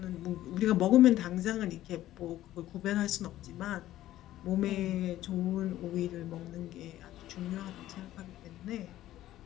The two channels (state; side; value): quieter; right; 14.0 dB